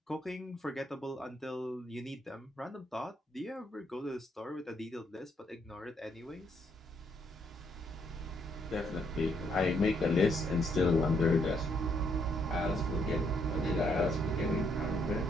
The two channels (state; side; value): normal; both; correlation 0.72